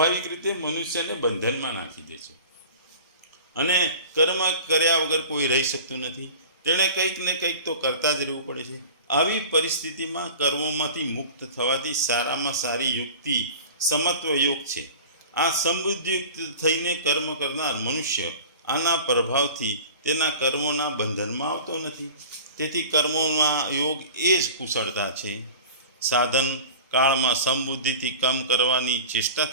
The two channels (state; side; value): inverted; both; correlation -0.39